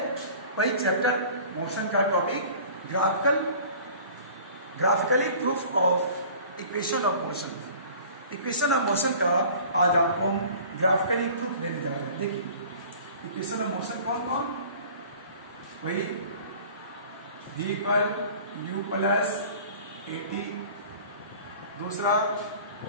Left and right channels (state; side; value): inverted; both; correlation -0.45